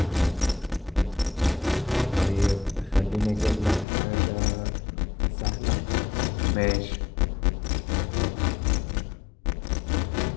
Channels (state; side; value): drops out; right; at 3.9 s